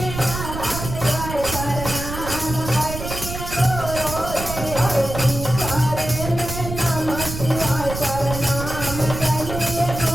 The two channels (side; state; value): right; noise; rumble, 7 dB below the sound